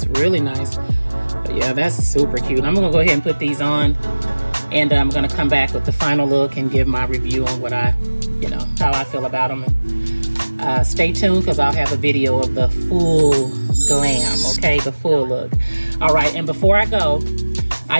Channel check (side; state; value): both; inverted; correlation -1.00